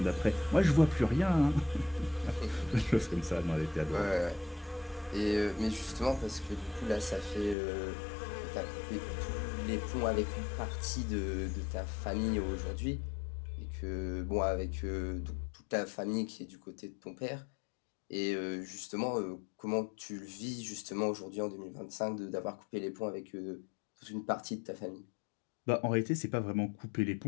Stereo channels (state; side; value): drops out; right; at 7.6 s